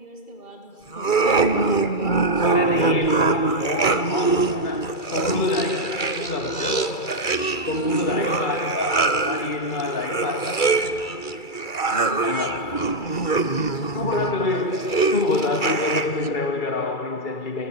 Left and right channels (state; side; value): late; right; 2.3 ms